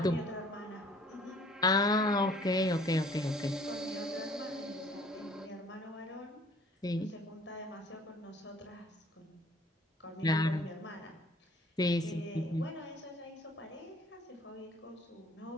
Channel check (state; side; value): normal; both; correlation 0.55